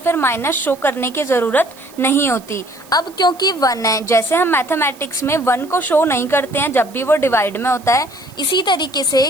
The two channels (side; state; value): right; noise; hiss, 24 dB below the sound